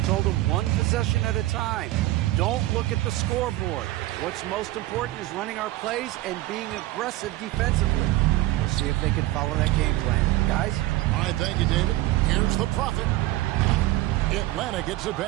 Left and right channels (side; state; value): left; quieter; 16.9 dB